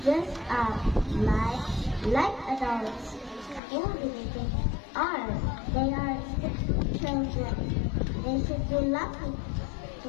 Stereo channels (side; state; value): right; drops out; at 3.6 s